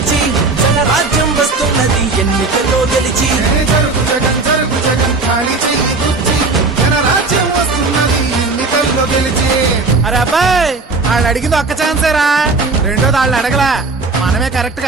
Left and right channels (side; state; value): left; quieter; 3.8 dB